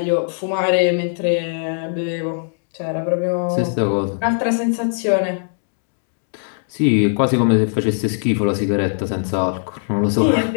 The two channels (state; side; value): silent; right; 66 dB below the other